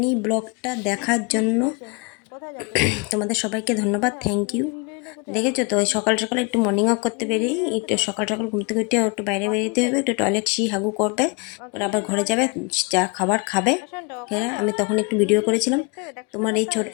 ব্লগটা দেখার জন্য তোমাদের সবাইকে ধন্যবাদ, থ্যাংক ইউ। দেখেছো তো, ওই সকাল সকাল একটু মর্নিং ওয়াক করতে বেরিয়ে, একটু সকাল সকাল ঘুম থেকে উঠে একটু বাইরে বেরিয়ে হবে, একটু টয়লেট হাগু করবে, ওরা আবার ঘরে যাবে, যা খাবার খাবে। হ্যাঁ, আমি তখন একটু ভিডিও করেছিলাম। তোমার এই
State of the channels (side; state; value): right; quieter; 30.1 dB